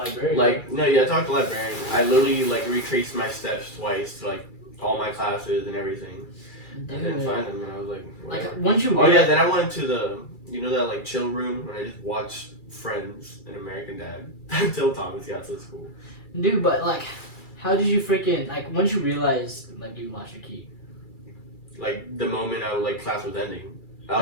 I talked to the librarian. I literally retraced my steps twice to all my classes and everything. I didn't find them, and I was like, whatever. Once you. Oh yeah, then I went to the, that chill room when I just watched Friends and American Dad until Thomas got to school. Dude, but how did you freaking once you realized you lost your key? The moment class was ending.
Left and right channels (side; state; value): right; late; 2.3 ms